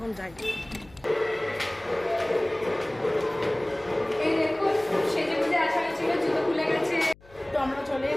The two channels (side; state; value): left; noise; hum, 25 dB below the sound